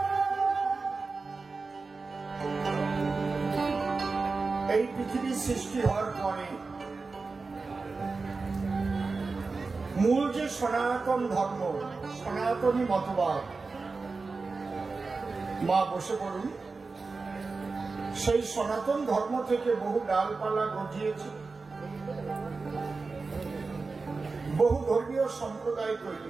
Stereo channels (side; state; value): left; quieter; 4.1 dB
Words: এই পৃথিবীর সৃষ্টি হওয়ার পরে মূল যে সনাতন ধর্ম, সনাতনী মতবাদ, মা বসে পড়ুন, সেই সনাতন ধর্ম থেকে বহু ডালপালা গজিয়েছে, বহু ধর্মীয় সম্প্রদায় তৈরি